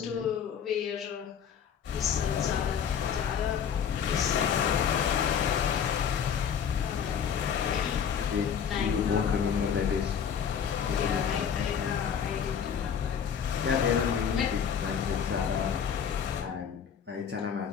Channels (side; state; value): right; quieter; 7.7 dB